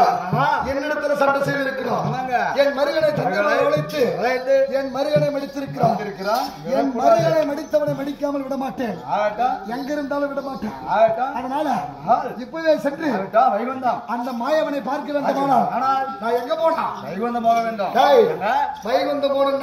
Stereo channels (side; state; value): both; identical; correlation 1.00